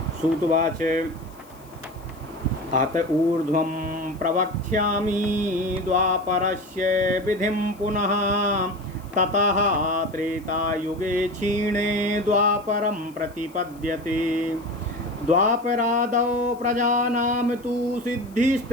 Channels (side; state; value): left; noise; hiss, 27 dB below the sound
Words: सूतुवाच अत ऊर्ध्वं प्रवक्ष्यामि द्वापरस्य विधिं पुनः। ततः त्रेतायुगे क्षीणे द्वापरं प्रतिपद्यते। द्वापरादौ प्रजानां तु